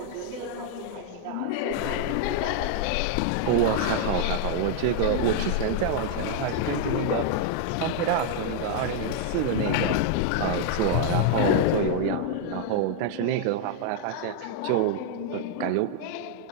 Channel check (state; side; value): different; both; correlation -0.01